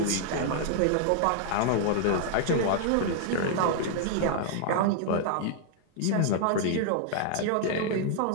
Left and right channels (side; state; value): both; different; correlation -0.01